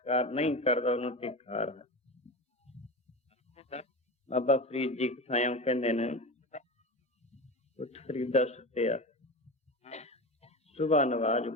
ਨਹੀਂ ਕਰਦਾ ਉਹਨੂੰ ਧਿਕਾਰ ਹੈ। ਬਾਬਾ ਫਰੀਦ ਜੀ ਕਥਾਇਓ ਕਹਿੰਦੇ ਨੇ, ਉੱਠ ਫਰੀਦਾ ਸੁੱਤਿਆ ਸੁਬਾ ਨਵਾਜ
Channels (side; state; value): both; normal; correlation 0.26